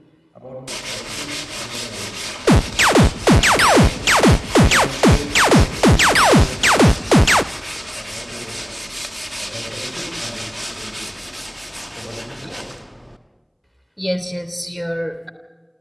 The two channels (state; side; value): identical; both; correlation 1.00